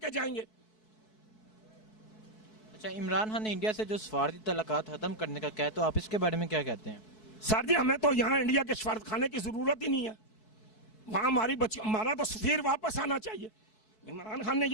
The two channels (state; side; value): late; right; 4.6 ms